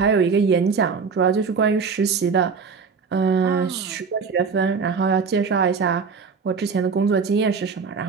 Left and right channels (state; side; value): quieter; left; 5.4 dB